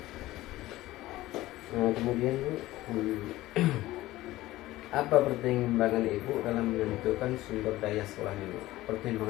Nah, kemudian Bu, apa pertimbangan Ibu dalam menentukan sumber daya sekolah ini?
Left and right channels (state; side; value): quieter; right; 16.8 dB